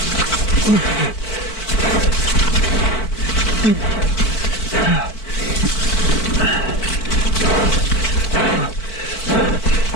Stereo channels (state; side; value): late; right; 4.5 ms